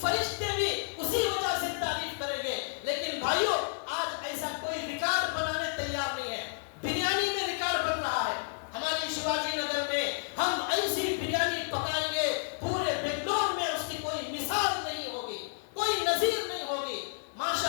فرشتے بھی اسی وجہ سے تعریف کریں گے. لیکن بھائیو, آج ایسا کوئی ریکارڈ بنانے تیار نہیں ہے. بریانی میں ریکارڈ بن رہا ہے. ہماری شیواجی نگر میں ہم ایسی بریانی پکائیں گے, پورے بنگلور میں اس کی کوئی مثال نہیں ہوگی, کوئی نظیر نہیں ہوگی.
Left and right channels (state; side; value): silent; right; digital silence